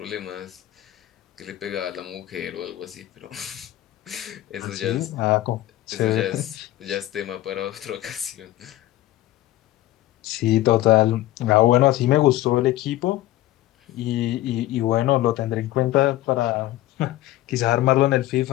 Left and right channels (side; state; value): right; quieter; 15.2 dB